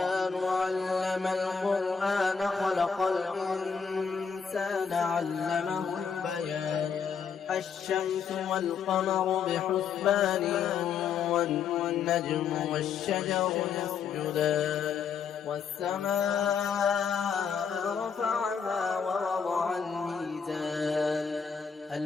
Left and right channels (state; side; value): quieter; right; 6.5 dB